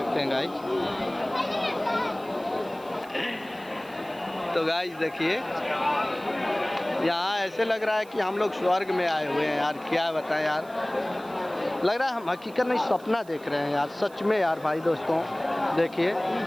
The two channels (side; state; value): right; noise; hiss, 24 dB below the sound